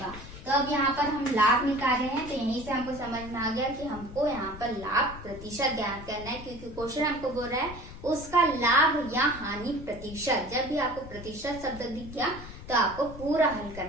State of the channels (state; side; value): noise; left; rumble, 14 dB below the sound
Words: तो अब यहाँ पर हम लाभ निकाल रहे हैं, तो यहीं से हमको समझ में आ गया कि हमको यहाँ पर लाभ प्रतिशत ज्ञात करना है, क्योंकि क्वेश्चन हमको बोल रहा है उसका लाभ या हानि प्रतिशत। जब भी आपको प्रतिशत शब्द दिख गया तो आपको पूरा हल